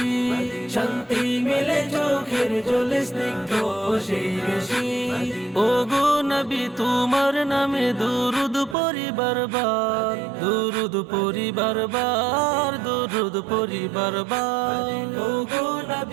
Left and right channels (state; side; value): drops out; left; at 8.8 s